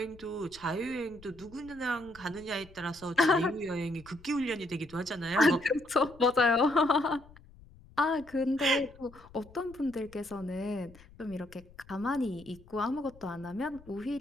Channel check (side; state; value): left; noise; rumble, 23 dB below the sound